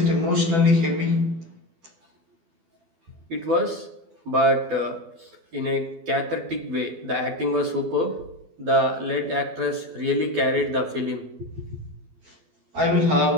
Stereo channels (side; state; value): left; late; 12 ms